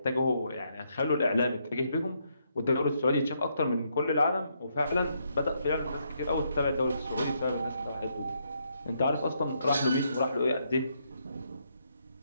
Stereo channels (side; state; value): both; inverted; correlation -0.76